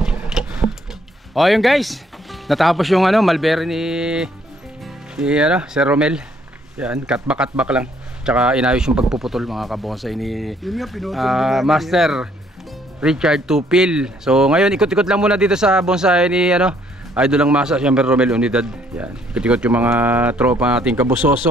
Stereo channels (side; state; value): both; normal; correlation 0.65